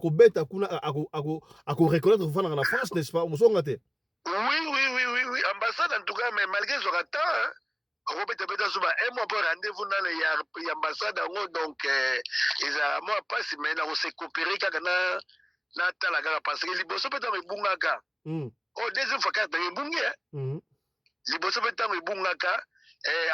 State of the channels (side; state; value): both; identical; correlation 1.00